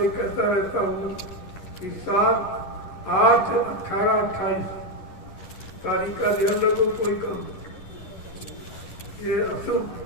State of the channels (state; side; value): late; right; 10 ms